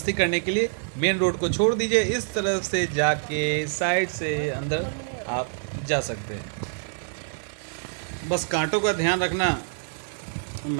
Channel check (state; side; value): silent; left; digital silence